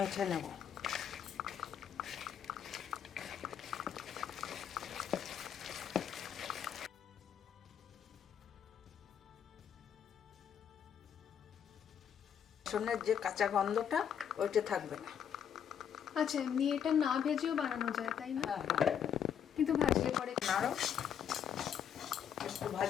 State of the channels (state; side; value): quieter; right; 8.6 dB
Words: নেব। রসুনের যে কাঁচা গন্ধটা ওইটা থাকবে না। আচ্ছা, এমনি এটা না ভেজেও বানানো যায় তাই না? হ্যাঁ, কিন্তু ভাজলে পরে আরো একটু